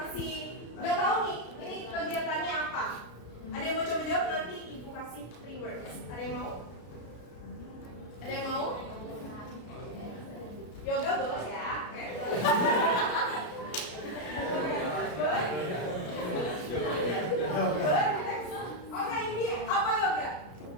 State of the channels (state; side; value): late; right; 33 ms